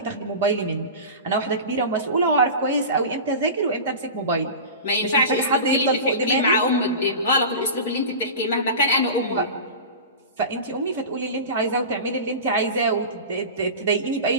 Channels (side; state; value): both; inverted; correlation -0.30